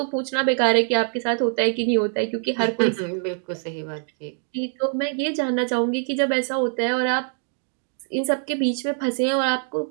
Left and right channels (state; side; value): silent; left; 58 dB below the other